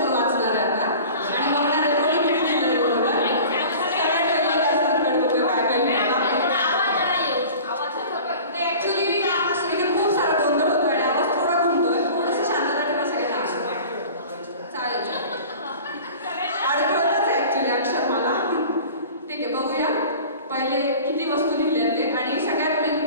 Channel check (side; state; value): both; inverted; correlation -0.41